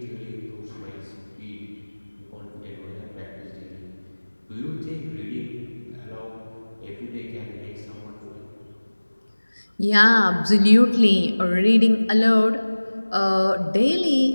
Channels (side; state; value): both; inverted; correlation -1.00